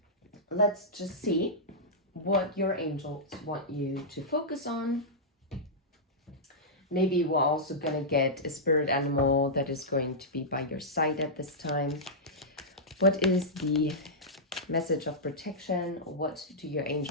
Let's just see what your angels want you to focus on. Maybe we're also going to get a spirit animal that is going to be by your side at this time. What is the message of protection? What do your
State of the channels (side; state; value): both; normal; correlation -0.11